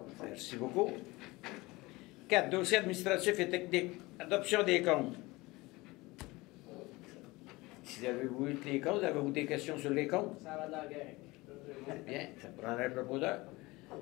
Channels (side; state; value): right; quieter; 21.9 dB